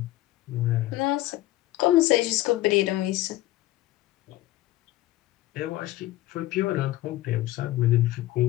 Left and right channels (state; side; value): quieter; right; 16.4 dB